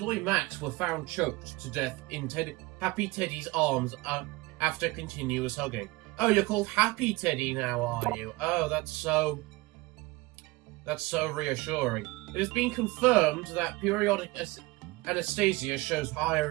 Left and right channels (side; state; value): left; quieter; 22.3 dB